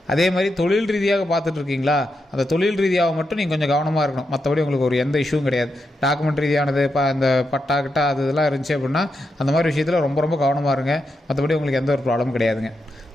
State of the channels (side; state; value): both; normal; correlation 0.85